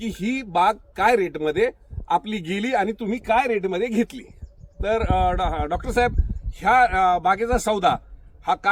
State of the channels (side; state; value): both; identical; correlation 1.00